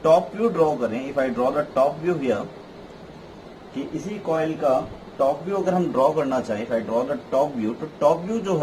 टॉप व्यू ड्रॉ करें, if I draw the top view here, कि इसी कॉइल का टॉप व्यू अगर हम ड्रॉ करना चाहें, if I draw the top view, तो टॉप व्यू जो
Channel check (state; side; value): identical; both; correlation 1.00